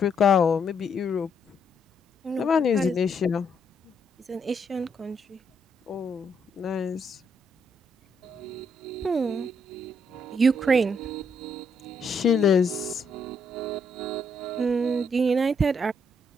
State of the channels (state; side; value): normal; both; correlation 0.74